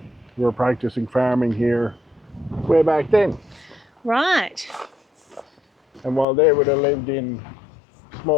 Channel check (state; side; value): drops out; right; at 6.2 s